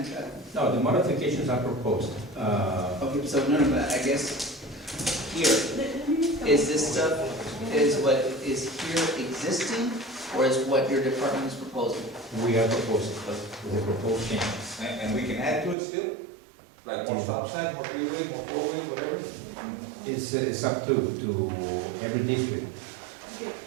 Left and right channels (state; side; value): drops out; left; at 15.8 s